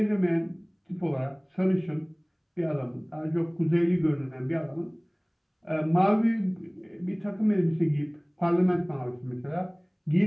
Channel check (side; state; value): both; identical; correlation 1.00